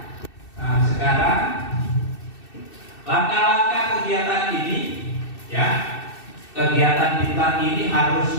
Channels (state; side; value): late; right; 2.6 ms